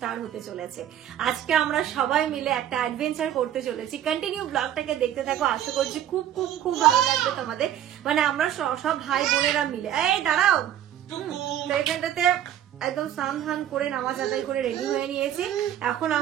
হতে চলেছে। আজকে আমরা সবাই মিলে একটা অ্যাডভেঞ্চার করতে চলেছি। কন্টিনিউ ব্লগটাকে দেখতে থাকো, আশা করছি খুব খুব খুব ভালো লাগবে তোমাদের। মানে আমরা সব ভাই বোনেরা মিলে, এই দাঁড়াও, এখানটাতে একদম স্নান ধান করে নামাজ আদায় করে রেডি হয়ে নিয়েছি। এখন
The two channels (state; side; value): quieter; left; 11.1 dB